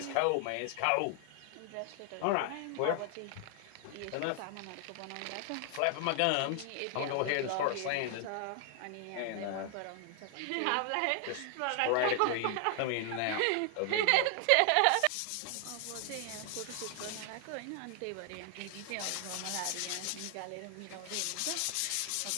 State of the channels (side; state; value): both; different; correlation 0.00